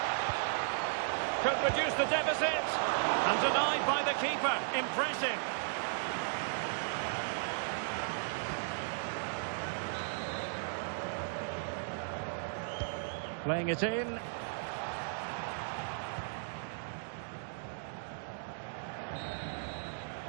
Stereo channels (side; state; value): left; silent; digital silence